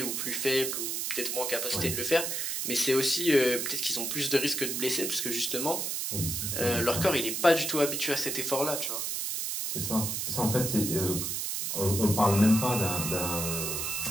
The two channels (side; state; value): right; noise; hiss, 2 dB below the sound